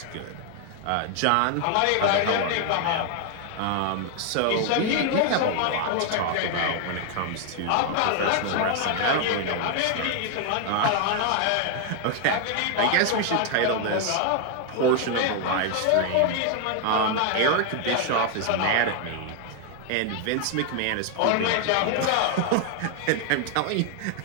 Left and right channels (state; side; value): different; both; correlation 0.00